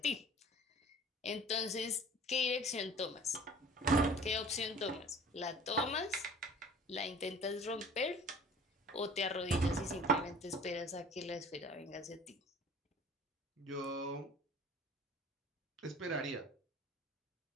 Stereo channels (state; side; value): normal; both; correlation 0.46